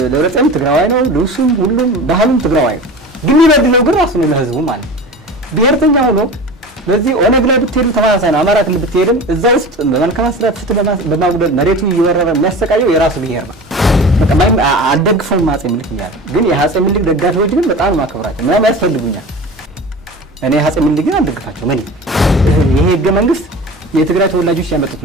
ለረጸም ትግራዋይ ነው ልብሱም ሁሉም ባህሉም ትግራዋይ ግን ይበድለው ግን ራሱ ነው ለህዝቡ ማለት ብሔርተኛ ሆኖ በዚህ ኦነግ ላይ ብትሄዱ ተማሳሳይ ነው አማራ ክልል ብትሄድም እዛ ውስጥ በመልካም አስተዳደር ፍትህ በማጉደል መሬቱ እየወረረ የሚያሰቃየው የራሱ ብሔር ነው በቃ አልደግፈውም አፄ ምኒልክ ይላል ግን የአፄ ምኒልክ ደጋፊዎች ግን በጣም ማከብራቸው ምንም ያስፈልጉኛል እኔ አፄ ምኒልክ ግን አልደግፋቸው ምን ይሄ ህገ መንግስት የትግራይ ተወላጆች ያመጡት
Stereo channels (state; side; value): normal; both; correlation 0.34